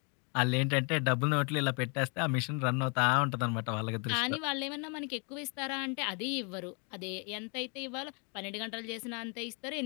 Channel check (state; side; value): quieter; right; 36.3 dB